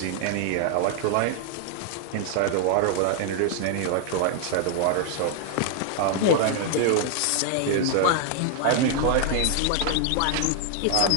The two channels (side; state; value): both; different; correlation 0.00